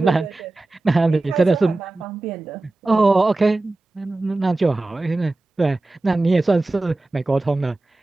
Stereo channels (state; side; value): quieter; left; 3.0 dB